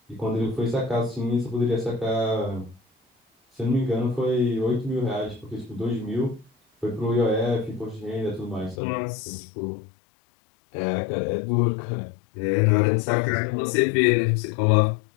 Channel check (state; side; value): drops out; right; at 8.8 s